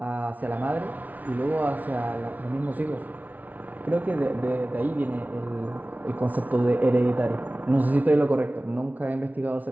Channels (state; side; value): late; left; 0.075 ms